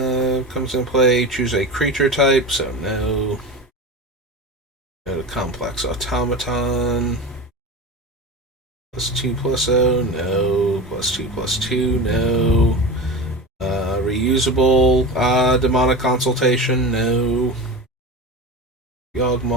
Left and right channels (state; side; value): normal; both; correlation 0.27